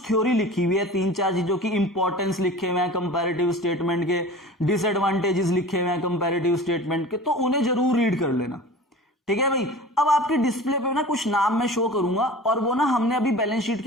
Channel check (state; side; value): normal; both; correlation 0.38